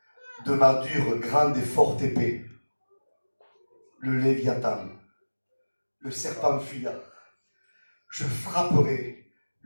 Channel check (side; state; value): both; inverted; correlation -1.00